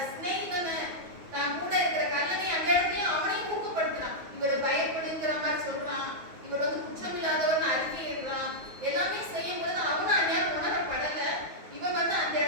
ஸ்நேகிதனை, தான் கூட இருக்கிற கல்லனை அந்த இடத்துலயும் அவனையும் ஊக்கப்படுத்துறான். இவர் பயப்படுங்கிற மாதிரி சொல்றான்.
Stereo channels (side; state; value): left; late; 9.5 ms